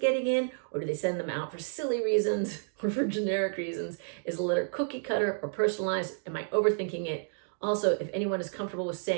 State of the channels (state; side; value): silent; left; digital silence